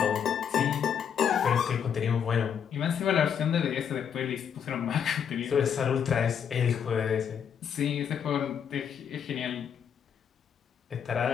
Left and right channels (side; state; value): right; quieter; 7.9 dB